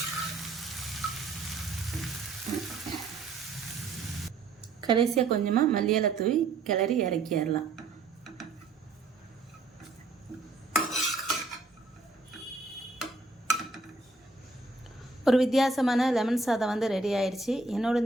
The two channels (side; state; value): left; quieter; 3.5 dB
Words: கடைசியாக கொஞ்சமாக மல்லி இலை தூவி கிளறி இறக்கிடலாம். ஒரு வித்தியாசமான லெமன் சாதம் ரெடி ஆயிடுச்சு. என்னோட